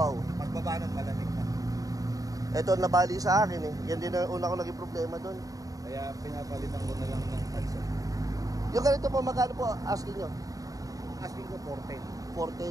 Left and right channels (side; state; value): left; late; 0.17 ms